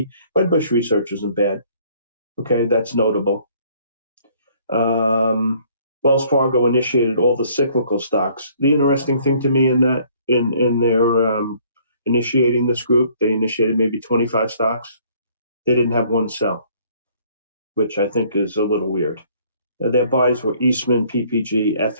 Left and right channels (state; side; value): inverted; both; correlation -0.60